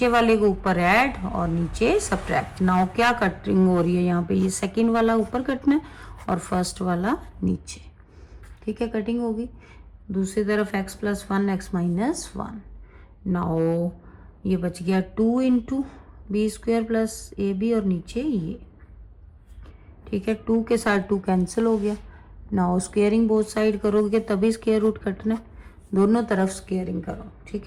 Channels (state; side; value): identical; both; correlation 1.00